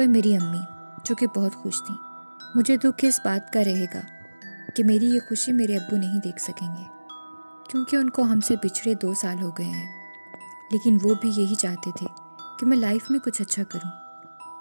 मेरी अम्मी जो कि बहुत खुश थी. मुझे दुख इस बात का रहेगा कि मेरी ये खुशी मेरे अब्बू नहीं देख सकेंगे क्योंकि उनको हमसे पिछड़े 2 साल हो गए हैं. लेकिन वो भी यही चाहते थे कि मैं लाइफ में कुछ अच्छा करूं.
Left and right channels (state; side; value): inverted; both; correlation -1.00